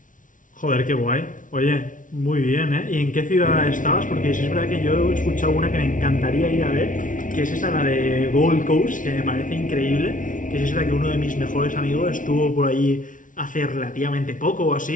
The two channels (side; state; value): right; late; 0.38 ms